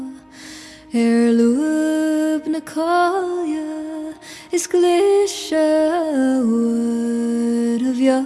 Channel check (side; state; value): both; identical; correlation 1.00